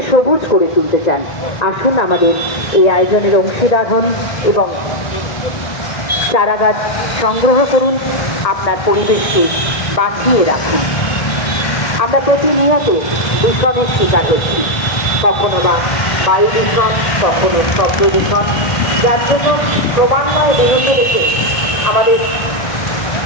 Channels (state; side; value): late; right; 1.8 ms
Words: সবুজ করে তুলতে চান, আসুন আমাদের এই আয়োজনের অংশীদার হন এবং চারাগাছ সংগ্রহ করুন, আপনার পরিবেশকে বাঁচিয়ে রাখুন। আমরা প্রতিনিয়ত দূষণের শিকার হচ্ছি, কখনো বা বায়ু দূষণ, কখনো শব্দ দূষণ, যার জন্য ক্রমান্বয়ে বেরোতে রেখে আমাদের